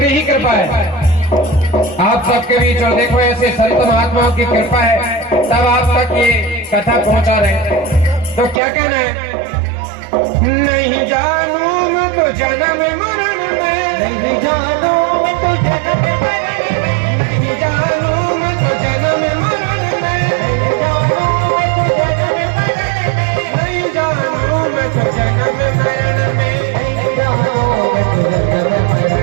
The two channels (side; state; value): left; drops out; at 8.6 s